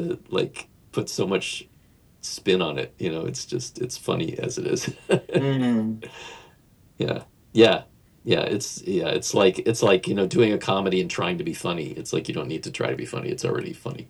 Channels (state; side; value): identical; both; correlation 1.00